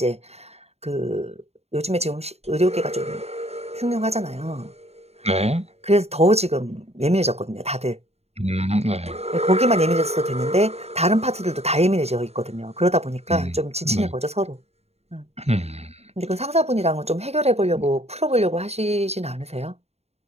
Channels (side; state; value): left; late; 0.30 ms